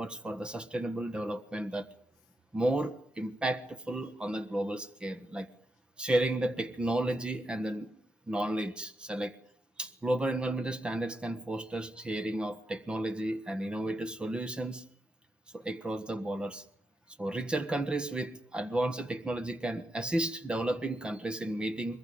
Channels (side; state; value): both; normal; correlation 0.84